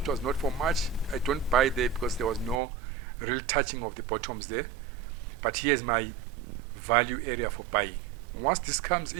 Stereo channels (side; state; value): left; drops out; at 2.6 s